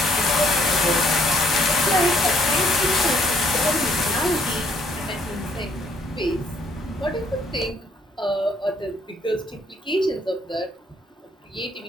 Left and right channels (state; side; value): normal; both; correlation 0.66